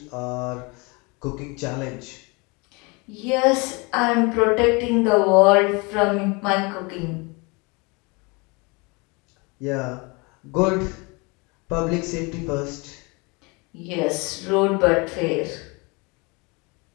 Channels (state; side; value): quieter; right; 28.3 dB